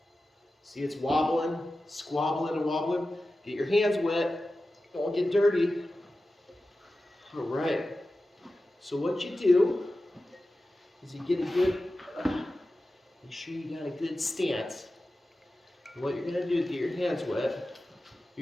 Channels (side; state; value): both; normal; correlation 0.94